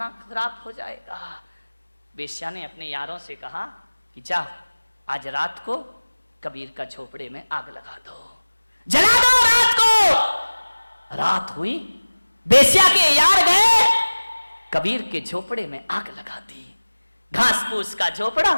खराब हो जाएगा। वेश्या ने अपने यारों से कहा कि जा, आज रात को कबीर का झोपड़े में आग लगा दो, जला दो रात को। रात हुई, वेश्या के यार गए, कबीर के झोपड़े में आग लगा दी। घास फूस का झोपड़ा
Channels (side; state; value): both; inverted; correlation -1.00